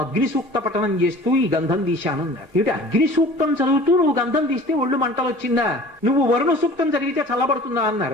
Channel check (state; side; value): normal; both; correlation 0.44